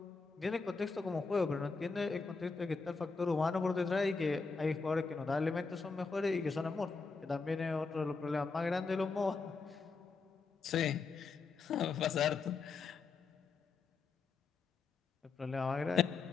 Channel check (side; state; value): right; quieter; 4.6 dB